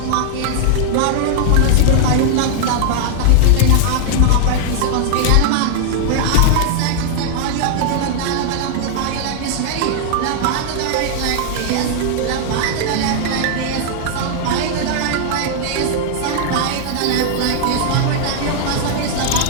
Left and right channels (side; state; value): both; different; correlation -0.01